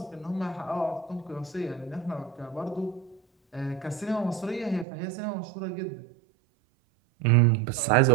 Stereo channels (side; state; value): left; drops out; at 4.9 s